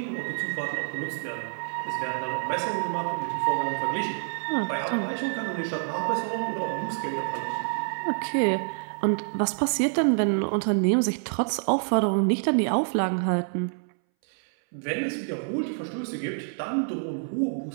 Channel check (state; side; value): silent; left; 60 dB below the other